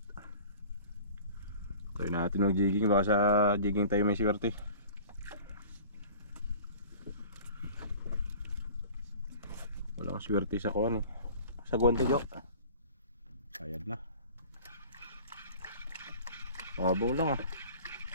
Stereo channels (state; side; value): inverted; both; correlation -0.43